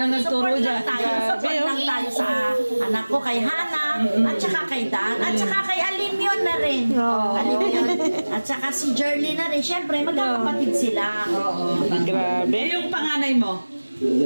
nagturo Support dyan. lang tayo. Support lang tayo sa anak ko, kay Hana, at saka kay Dan, at saka kay Alimyon na rin. Alimyon. At saka si Jerly na rin. Siyempre, magkakapatid sila. Grabe. Eh, yung panganay mo.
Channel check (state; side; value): inverted; both; correlation -1.00